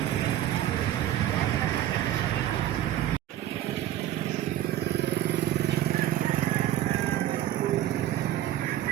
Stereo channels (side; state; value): left; quieter; 12.7 dB